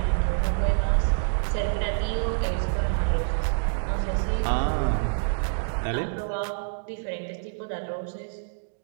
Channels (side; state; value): left; silent; digital silence